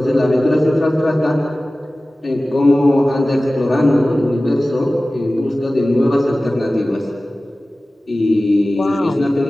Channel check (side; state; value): both; normal; correlation 0.97